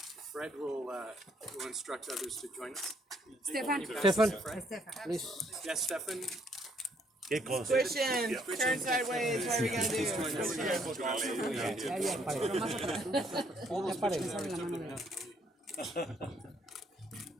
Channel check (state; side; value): normal; both; correlation 0.68